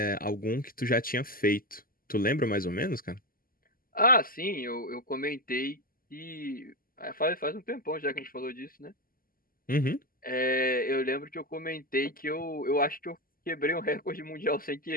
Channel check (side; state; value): right; late; 0.42 ms